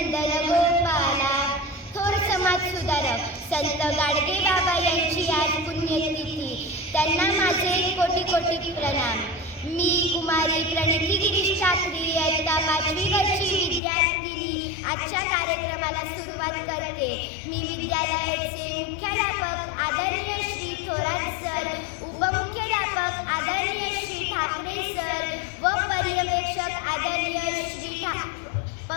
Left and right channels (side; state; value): right; drops out; at 13.8 s